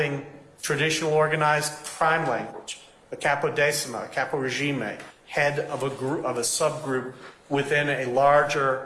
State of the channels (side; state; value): both; identical; correlation 1.00